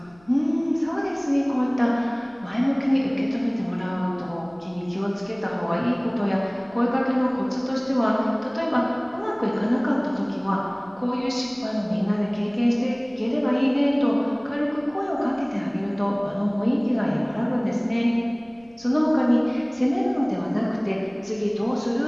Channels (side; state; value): left; noise; rumble, 29 dB below the sound